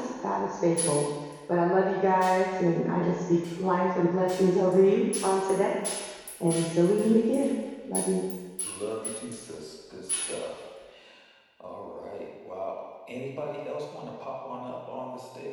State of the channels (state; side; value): identical; both; correlation 1.00